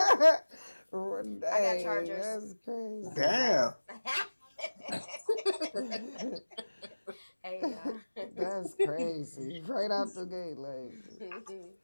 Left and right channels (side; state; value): both; inverted; correlation -1.00